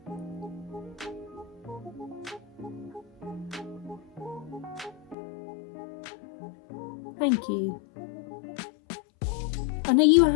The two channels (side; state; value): right; drops out; at 5.2 s